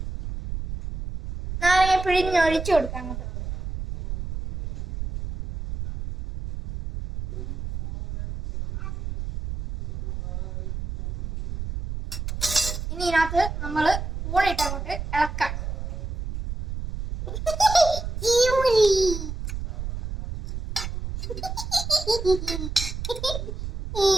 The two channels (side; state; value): right; noise; rumble, 6 dB below the sound